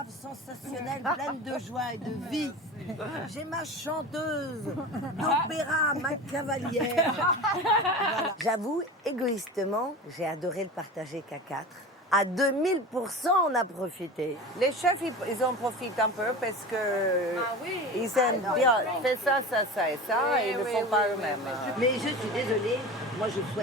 sensationnelle, pleine de joie et de vie. J'ai ma chanteuse d'opéra, ma cavalière. Voilà. J'avoue, égoïstement, j'ai adoré le partager qu'à 4. À 2000%, on a profité. Les chefs, ils en profitent un peu parce que ils aiment bien. Fais ça, ça, ça et ça, et ils ne font pas eux-mêmes. Mais je suis désolée, moi je ne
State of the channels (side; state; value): both; normal; correlation 0.31